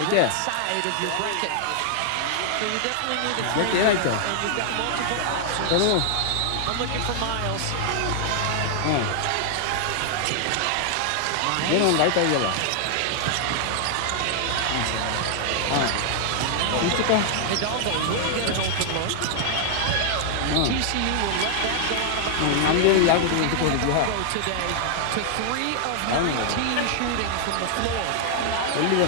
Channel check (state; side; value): different; both; correlation 0.00